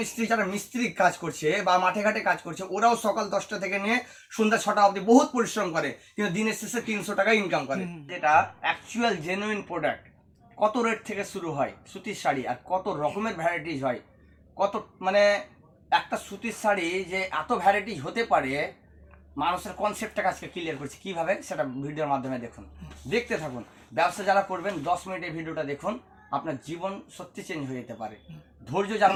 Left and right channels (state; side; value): identical; both; correlation 1.00